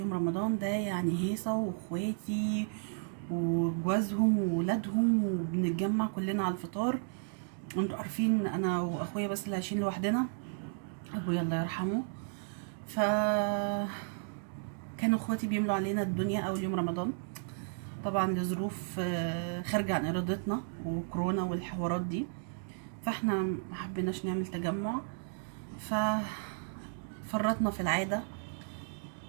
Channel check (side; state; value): left; silent; digital silence